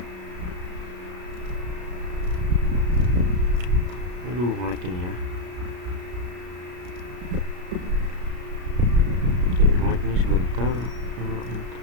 Aduh, nge-lag ini ya. Ini sebentar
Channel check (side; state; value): left; late; 33 ms